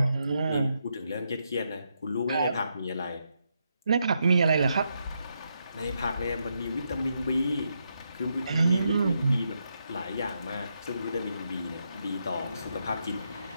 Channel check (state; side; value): inverted; both; correlation -0.81